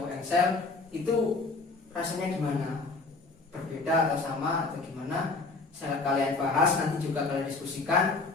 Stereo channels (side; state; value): right; quieter; 3.7 dB